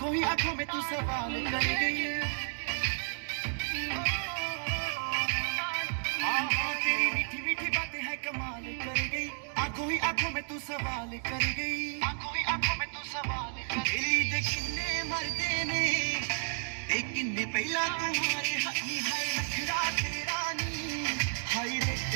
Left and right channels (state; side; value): silent; left; 56 dB below the other